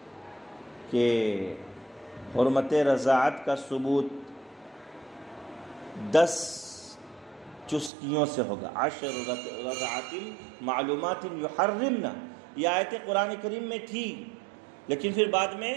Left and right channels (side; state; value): left; drops out; at 7.9 s